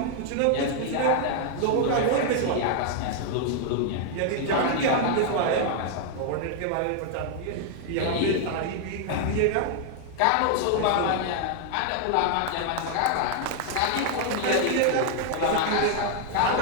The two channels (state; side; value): different; both; correlation 0.00